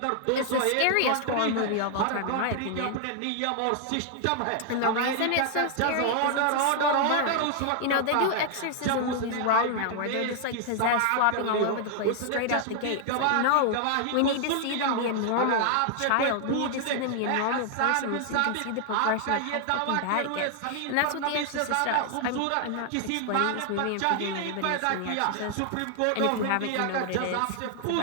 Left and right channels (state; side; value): different; both; correlation 0.00